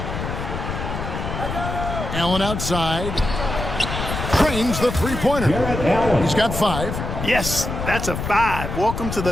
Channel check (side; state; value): left; noise; rumble, 5 dB below the sound